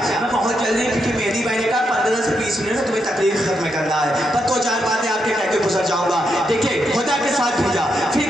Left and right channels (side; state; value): both; normal; correlation 0.82